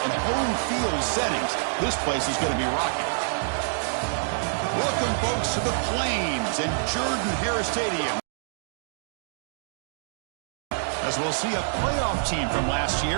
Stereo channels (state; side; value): silent; left; digital silence